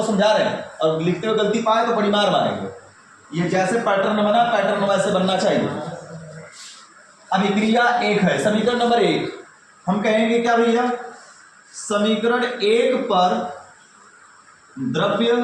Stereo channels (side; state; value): both; identical; correlation 1.00